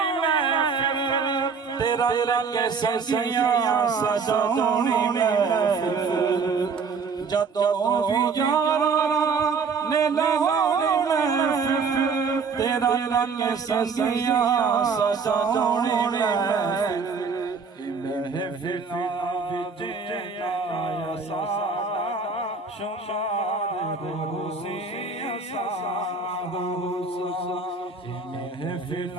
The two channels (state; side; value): quieter; left; 5.2 dB